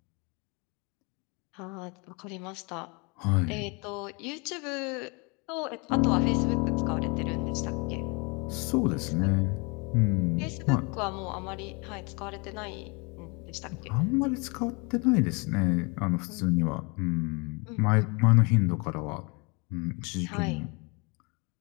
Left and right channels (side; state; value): right; quieter; 30.6 dB